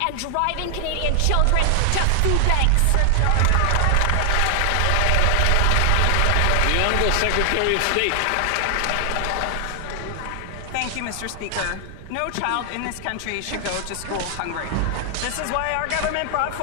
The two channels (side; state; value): both; different; correlation 0.00